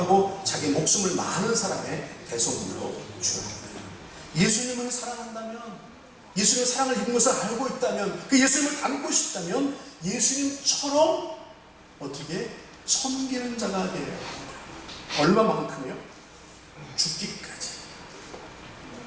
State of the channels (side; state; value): both; identical; correlation 1.00